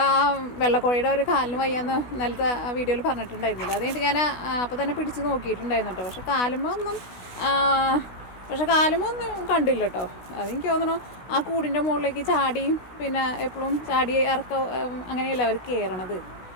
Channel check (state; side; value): late; right; 16 ms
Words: ആ വെള്ളക്കോഴിയുടെ ഒരു കാലിന് വയ്യാന്ന് ഇന്നലത്തെ വീഡിയോയിൽ പറഞ്ഞിട്ടുണ്ടായിരുന്നില്ല. അത് കഴിഞ്ഞിട്ട് ഞാൻ അപ്പോൾ തന്നെ പിടിച്ച് നോക്കിയിട്ടുണ്ടായിരുന്നു കേട്ടോ. പക്ഷെ കാലുമൊന്നും കണ്ടില്ല കേട്ടോ. അതെനിക്ക് തോന്നണു ആ കൂടിൻ്റെ മുകളിലേക്ക് ചാടിയും പിന്നെ എപ്പോഴും ചാടി അങ്ങനെയല്ല അവർ കയറണത്.